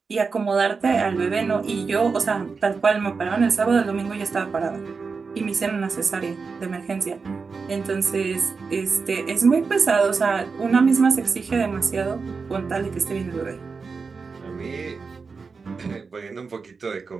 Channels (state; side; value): quieter; left; 4.9 dB